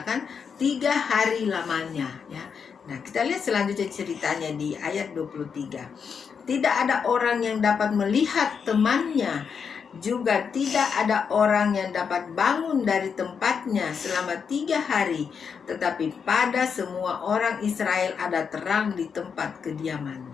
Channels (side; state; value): right; quieter; 6.4 dB